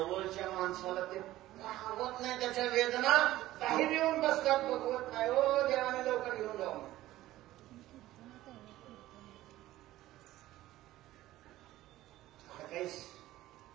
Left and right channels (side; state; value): left; quieter; 15.5 dB